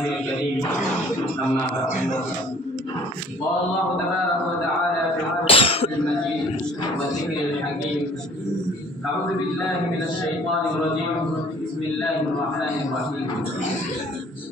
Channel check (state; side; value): normal; both; correlation 0.53